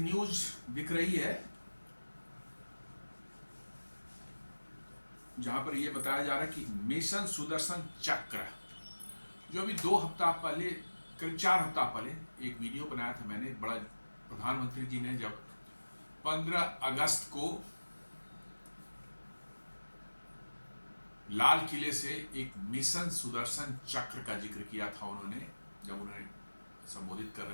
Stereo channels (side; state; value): both; inverted; correlation -1.00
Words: दिख रही है जहां पर यह बताया जा रहा है कि मिशन सुदर्शन चक्र, जो अभी 2 हफ्ता पहले, करीब 4 हफ्ता पहले एक वीडियो बनाया था मैंने, बड़ा प्रधानमंत्री जी ने जब 15 अगस्त को लाल किले से एक मिशन सुदर्शन चक्र का जिक्र किया था उन्होंने, जब उन्हें संबोधित कर